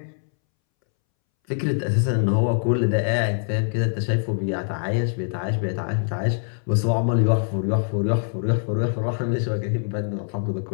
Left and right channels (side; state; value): right; silent; 63 dB below the other